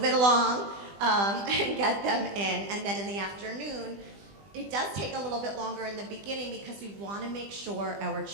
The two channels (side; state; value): left; late; 20 ms